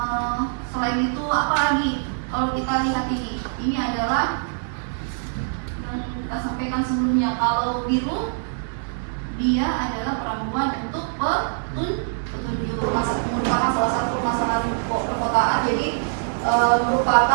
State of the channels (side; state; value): left; silent; digital silence